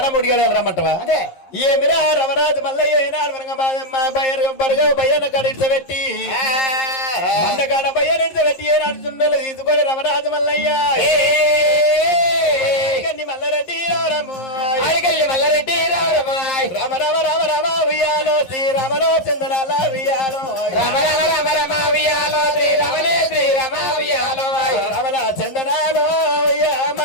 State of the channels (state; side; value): late; right; 11 ms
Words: గడియలు రమ్మంటావా అదే ఏమిరా రమరాజు మల్లయ్య ఏనాడు బయ్యన కడిపెట్టి మండగాడ బయ్యన పెట్టి ఏనాడు చుండలు తీసుకొని రమరాజు మల్లయ్య మల్లారెడ్డి రామ రామ రామ రామ ఉయ్యాలో శ్రీరామలో చందనాల ఉయ్యాలో రమణ చందనాలో